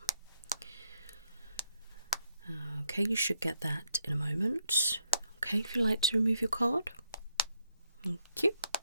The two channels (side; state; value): both; inverted; correlation -0.77